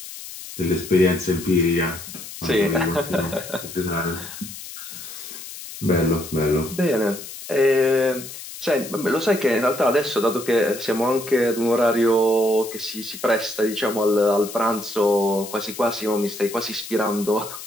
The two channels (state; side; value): noise; left; hiss, 12 dB below the sound